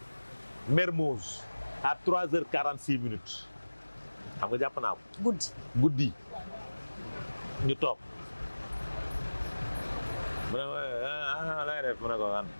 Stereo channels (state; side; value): inverted; both; correlation -1.00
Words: Mermoz à 3h46 minutes xam nga jàpp naa ko. guddi ñu toog mu ne la ngay def mu ne ko an